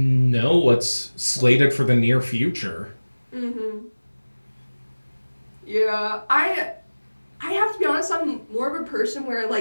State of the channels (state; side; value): inverted; both; correlation -1.00